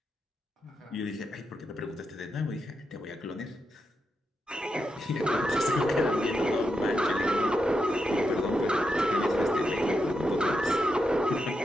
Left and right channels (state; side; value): normal; both; correlation 0.85